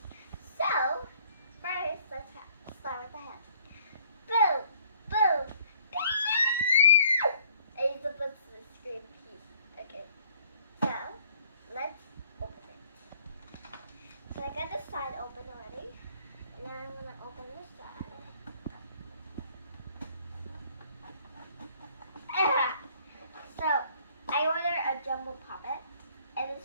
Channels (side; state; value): both; inverted; correlation -0.60